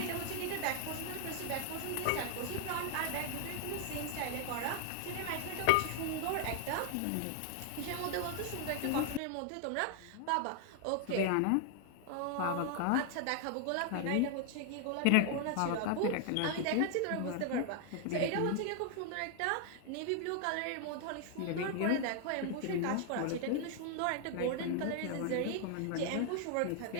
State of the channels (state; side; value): different; both; correlation 0.00